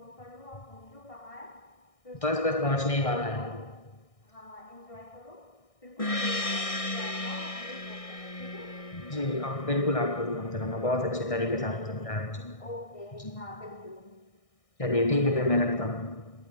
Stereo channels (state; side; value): late; right; 1.6 ms